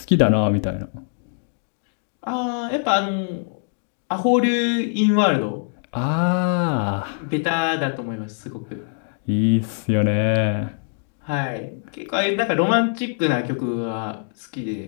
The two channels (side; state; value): right; silent; 64 dB below the other